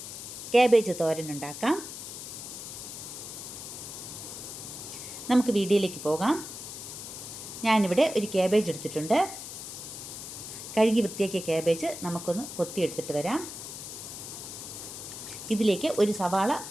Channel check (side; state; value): left; noise; hiss, 9 dB below the sound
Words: ക്യാബേജ് തോരൻ ഉണ്ടാക്കാം. നമുക്ക് വീഡിയോയിലേക്ക് പോകാം. ഞാനിവിടെ ഒരു ക്യാബേജ് എടുത്തിട്ടുണ്ട്. കഴുകി വൃത്തിയാക്കിയ ക്യാബേജ് നമുക്കൊന്ന് കൊത്തിയെടുത്തിട്ട് വരാം. ഇതിലേക്ക് ഒരു സവാള